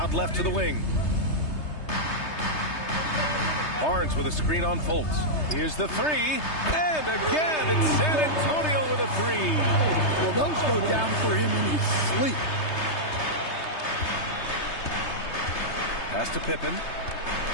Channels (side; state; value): right; late; 3.3 ms